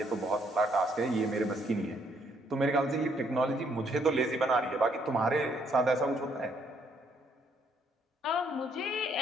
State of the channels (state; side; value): normal; both; correlation 0.69